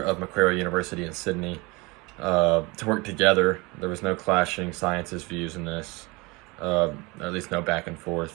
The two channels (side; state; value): left; quieter; 25.3 dB